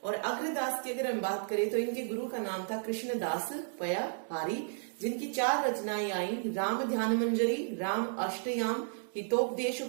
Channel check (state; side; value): silent; left; digital silence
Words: और अग्रदास की अगर हम बात करें तो इनके गुरु का नाम था कृष्णदास पयाहारी, जिनकी 4 रचनाएं आई, राम ध्यान मंजरी, राम अष्टयाम, हितोपदेश